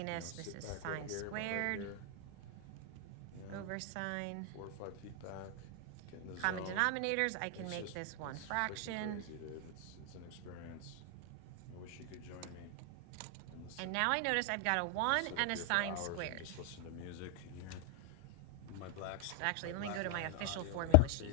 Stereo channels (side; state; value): both; different; correlation 0.00